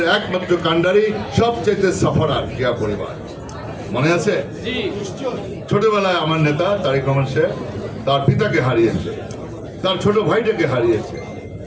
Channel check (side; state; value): both; identical; correlation 1.00